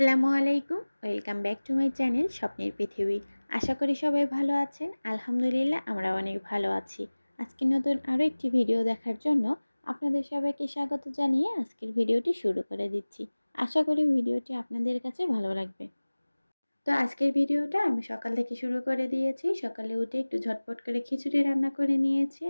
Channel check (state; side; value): inverted; both; correlation -1.00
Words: আলাইকুম, welcome back to my channel স্বপ্নের পৃথিবী। আশা করি সবাই ভালো আছেন। আলহামদুলিল্লাহ আমরা অনেক ভালো আছি। আজকে নতুন আরও একটি ভিডিও দেখার জন্য আপনাদের সবাইকে স্বাগত জানিয়ে আজকের ভিডিওটি শুরু করে দিচ্ছি। আশা করি ভিডিওটি আপনাদের কাছে ভালো লাগবে। তো আজকের ভিডিওটা আমি সকাল থেকে শুরু করে দিয়েছি। সকালে উঠে একটু ঝটপট করে খিচুড়ি রান্না করে নিয়েছি